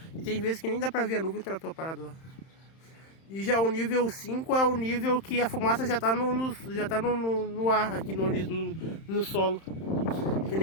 E tem vezes que nem dá pra ver a nuvem, o trator parado lá. E já o nível 5 é o nível que a fumaça já tá no ar, aqui no solo. Tem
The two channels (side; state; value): right; late; 31 ms